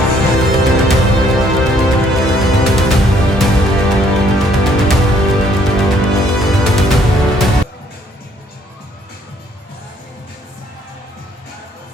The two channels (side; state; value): both; normal; correlation 0.65